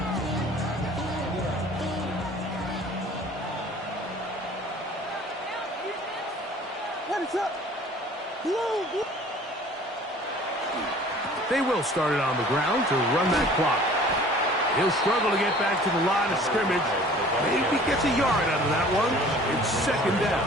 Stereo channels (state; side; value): normal; both; correlation 0.49